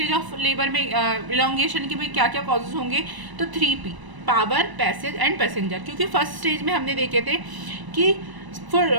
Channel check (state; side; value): late; left; 1.0 ms